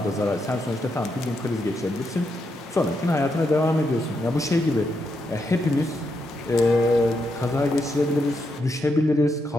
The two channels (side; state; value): both; normal; correlation 0.81